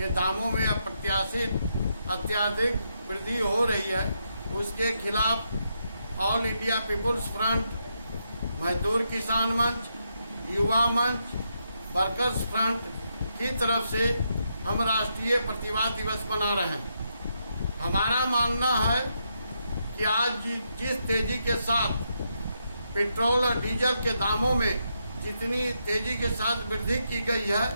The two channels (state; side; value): inverted; both; correlation -0.81